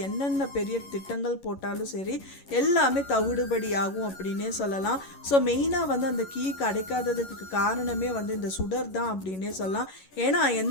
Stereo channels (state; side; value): late; right; 11 ms